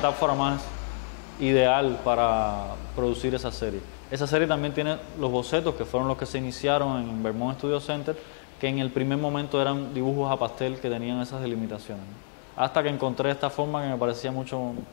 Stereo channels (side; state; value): right; silent; digital silence